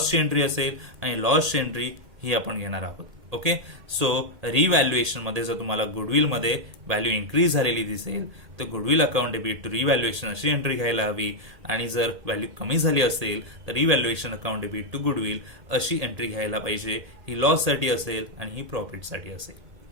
एंट्री असेल, आणि लॉसची एंट्री ही आपण घेणार आहोत. ओके, सो रिव्हॅल्युएशन मध्ये जर तुम्हाला गुडविलमध्ये व्हॅल्यू इन्क्रीज झालेली दिसेल तर goodwill account debit to revaluation अशी एंट्री घ्यायला हवी, आणि जर व्हॅल्यू कमी झाली असेल तर revaluation account debit to goodwill अशी एंट्री घ्यायला पाहिजे. ही लॉससाठी असेल आणि ही प्रॉफिटसाठी असेल.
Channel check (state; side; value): late; left; 1.8 ms